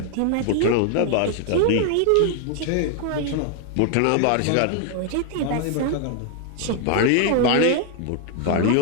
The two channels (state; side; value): different; both; correlation 0.00